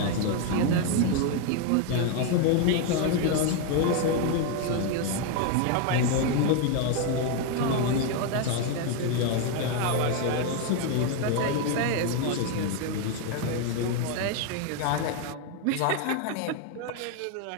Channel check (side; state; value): both; different; correlation 0.01